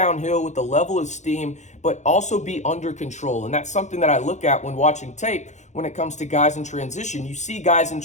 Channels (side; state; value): right; late; 0.34 ms